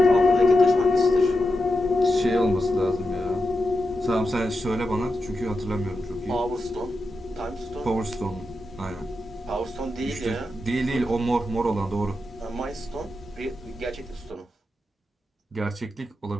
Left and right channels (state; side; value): normal; both; correlation 0.88